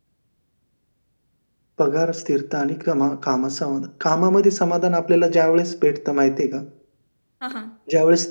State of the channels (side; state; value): both; inverted; correlation -1.00